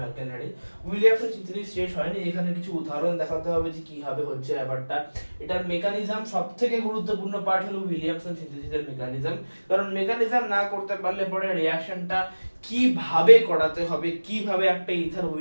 alkyl halide. Williamson synthesis শেষ হয়নি, এখানে কিছু উদাহরণ দেখাতে হবে যে কিভাবে হচ্ছে ব্যাপারটা। এটার মেকানিজম সবথেকে গুরুত্বপূর্ণ পার্ট হলো উইলিয়ামসন সিনথেসিসের মেকানিজম, কারণ মেকানিজম না করতে পারলে পরে রিঅ্যাকশনটা কিভাবে করাতে হবে, কিভাবে একটা ইথার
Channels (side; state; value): both; inverted; correlation -1.00